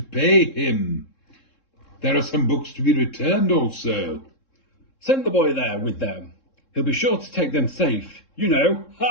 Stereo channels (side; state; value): right; late; 3.7 ms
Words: pay him. There are some books to be returned also. Send the boy there with them. He'll be sure to take them safe. You know.